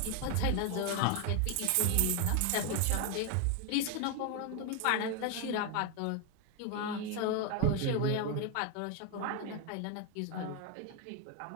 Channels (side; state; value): both; different; correlation 0.01